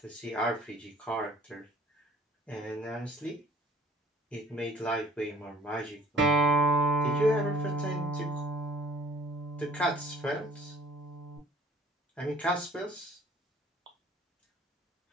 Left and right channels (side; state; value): both; normal; correlation 0.53